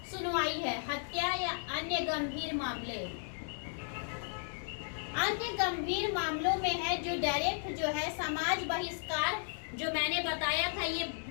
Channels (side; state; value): right; silent; digital silence